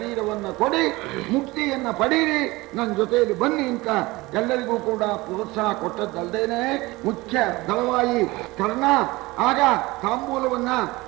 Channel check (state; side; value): quieter; left; 21.2 dB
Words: ಕೊಡಿ, ಮುಕ್ತಿಯನ್ನ ಪಡೀರಿ, ನನ್ನ ಜೊತೆಯಲ್ಲಿ ಬನ್ನಿ ಅಂತ ಎಲ್ಲರಿಗೂ ಕೂಡ ಪ್ರೋತ್ಸಾಹ ಕೊಟ್ಟದ್ದಲ್ದೇನೆ ಮುಖ್ಯ ದಳವಾಯಿ ಕರ್ಣ ಆಗ ತಾಂಬೂಲವನ್ನ